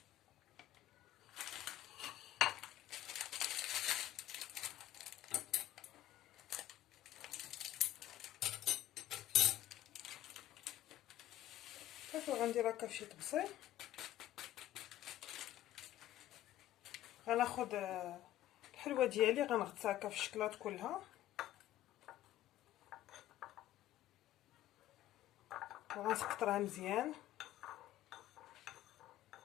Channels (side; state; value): right; quieter; 13.6 dB